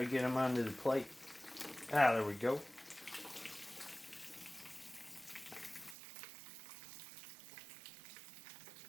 get them onto the plate. Ah, there we go.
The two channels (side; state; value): left; drops out; at 6.0 s